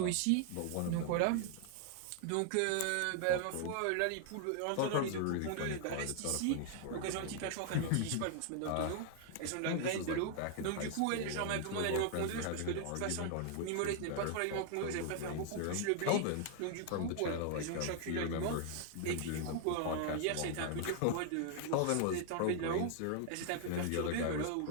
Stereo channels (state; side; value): different; both; correlation 0.00